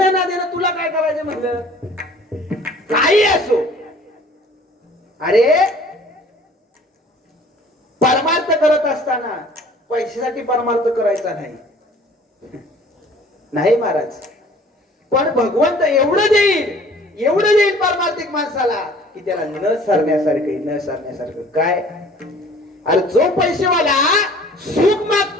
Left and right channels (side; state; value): both; normal; correlation 0.51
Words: ना देणं तुला काय करायचं? म्हणलं काही असो, अरे परमार्थ करत असताना पैशासाठी परमार्थ करायचा नाही. नाही महाराज, पण भगवंत एवढं देईल परमार्थिक माणसाला की त्याला न सरण्यासारखं काय. अरे जो पैसेवाला सुख